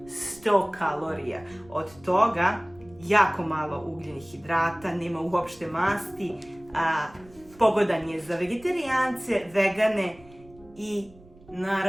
100 kalorija. Od toga jako malo ugljenih hidrata, nema uopšte masti, pogodan je za vegetarijance, vegane i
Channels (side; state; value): right; noise; rumble, 24 dB below the sound